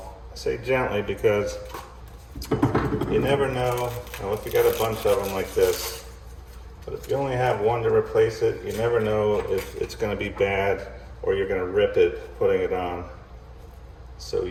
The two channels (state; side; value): identical; both; correlation 1.00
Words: I say gently because you never know. Now, if you got a bunch of them like this, but if you only have one to replace it, you never know if it's going to be bad or you're going to rip it putting it on. So